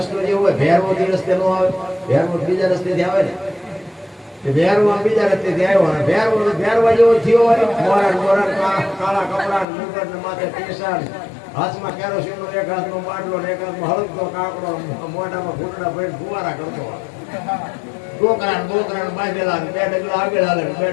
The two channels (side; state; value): right; drops out; at 9.7 s